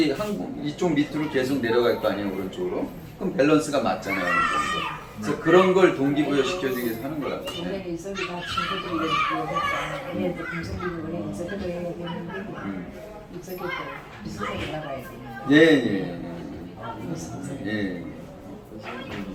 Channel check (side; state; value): both; identical; correlation 1.00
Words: 이쪽 밑으로 계속 내려갈 거 아니에요, 오른쪽으로. 그럼 밸런스가 맞잖아요, 어느 정도. 그래서 그런 걸 동기부여 시켜주기 위해서 하는 거라고. 원래 이석이 다 친구들이 얘기했다. 얘네들 금성들이 원래 이석이도 해야 되는데 이석이도 비슷하게 나가야 되는데. 예. 예.